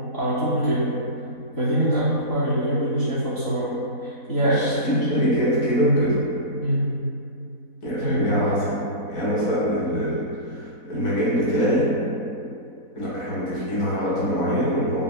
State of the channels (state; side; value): late; right; 4.1 ms